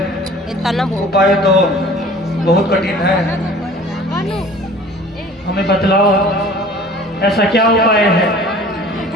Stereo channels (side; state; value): both; normal; correlation 0.47